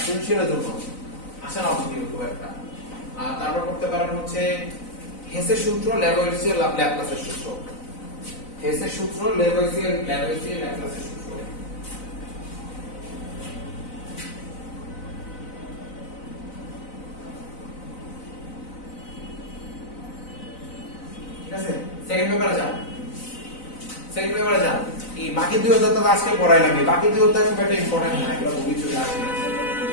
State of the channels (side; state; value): right; late; 4.0 ms